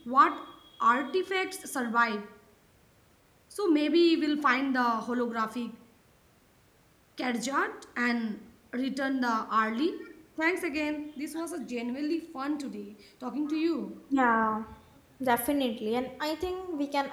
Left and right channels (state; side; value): identical; both; correlation 1.00